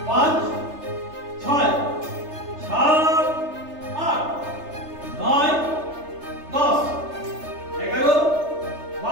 পাঁচ, ছয়, সাত, আট, নয়, 10, 11,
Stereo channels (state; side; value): late; left; 3.3 ms